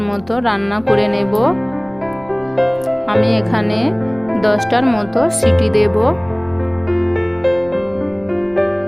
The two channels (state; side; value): noise; left; rumble, 27 dB below the sound